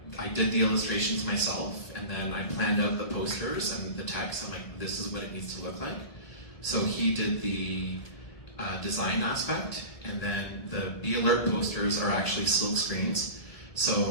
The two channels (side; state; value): right; late; 1.6 ms